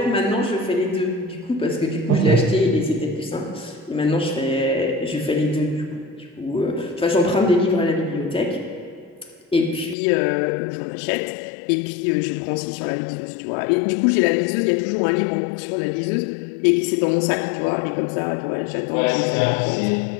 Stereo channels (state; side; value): drops out; right; at 10.0 s